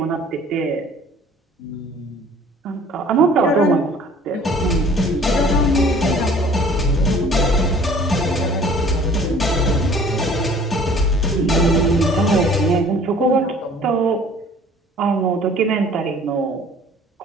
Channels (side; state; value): both; normal; correlation 0.51